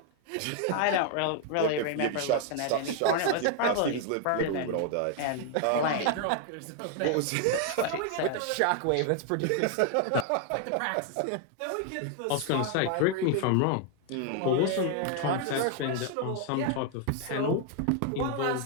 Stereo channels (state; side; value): different; both; correlation 0.00